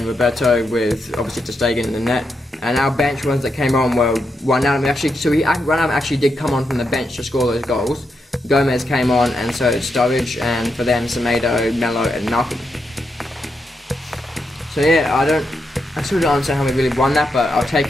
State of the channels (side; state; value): both; normal; correlation 0.84